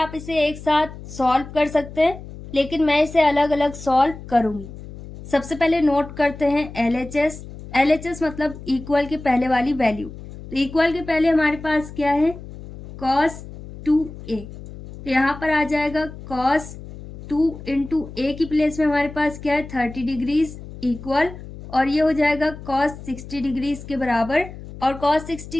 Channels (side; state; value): left; noise; hum, 14 dB below the sound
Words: इसे एक साथ सॉल्व कर सकते हैं, लेकिन मैं इसे अलग अलग सॉल्व करूँगी। सबसे पहले नोट करते हैं LHS। LHS मतलब इक्वल के पहले वाली वैल्यू, तो इक्वल के पहले हमारे पास क्या है, cos 2a, तो यहाँ पर आ जाएगा cos 2 इंटू ए की प्लेस में हमारे पास क्या है 30 डिग्रीज इक्वल, और ये हो जाएगा cos 60 डिग्रीज के बराबर, और cos